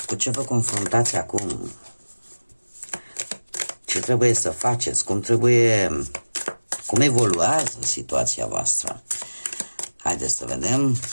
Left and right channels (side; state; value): both; inverted; correlation -1.00